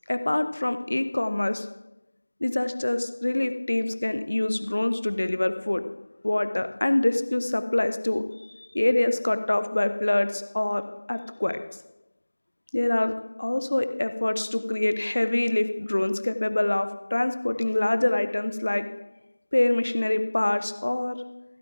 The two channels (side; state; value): both; inverted; correlation -1.00